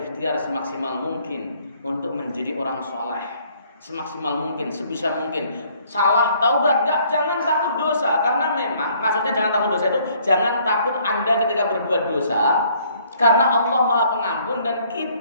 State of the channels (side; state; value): both; inverted; correlation -0.62